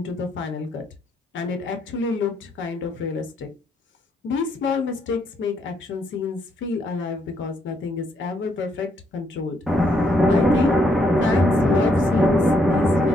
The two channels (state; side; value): normal; both; correlation 0.73